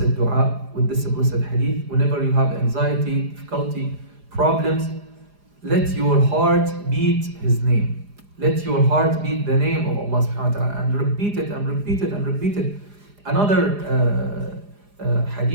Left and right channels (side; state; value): left; late; 4.9 ms